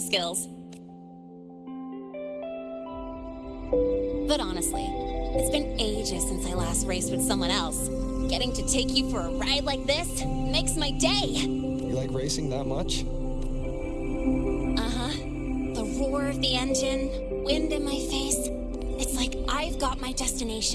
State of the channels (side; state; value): both; identical; correlation 1.00